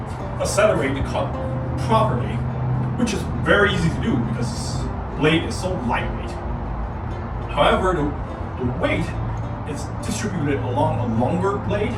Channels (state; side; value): identical; both; correlation 1.00